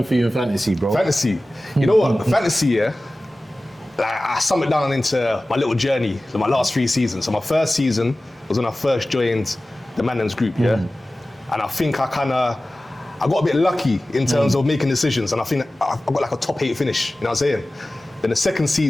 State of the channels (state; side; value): normal; both; correlation 0.97